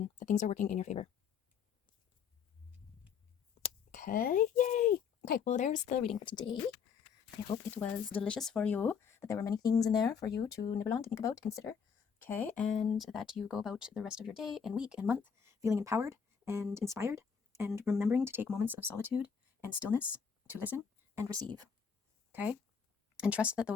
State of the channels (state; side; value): quieter; right; 6.6 dB